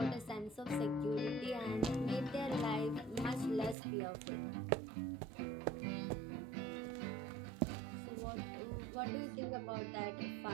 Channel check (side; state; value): left; drops out; at 3.8 s